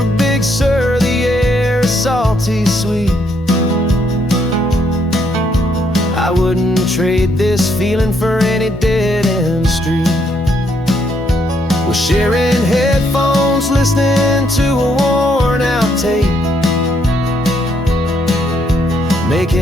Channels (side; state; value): both; normal; correlation 0.72